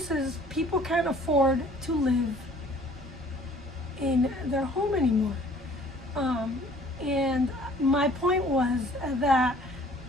people can't afford to live in their home anymore. And my point was that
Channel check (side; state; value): both; normal; correlation 0.54